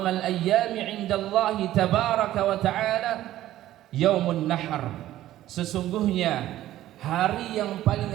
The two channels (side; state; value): left; quieter; 14.0 dB